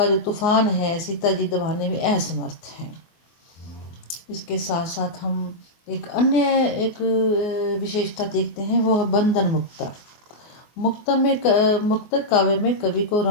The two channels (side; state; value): right; late; 24 ms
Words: जो तूफान है सीता जी दबाने में असमर्थ हैं। इसके साथ साथ हम एक विशेषता देखते हैं, वो है बंधन मुक्ता। मुक्तक काव्य में कवि को